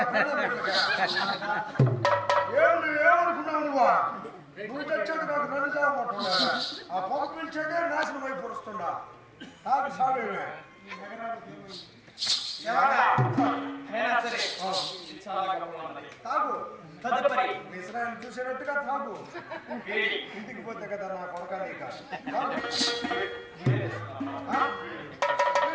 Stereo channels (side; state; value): both; identical; correlation 1.00